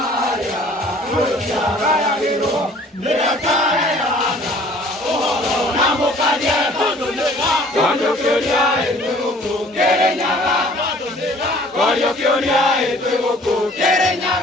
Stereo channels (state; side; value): normal; both; correlation 0.53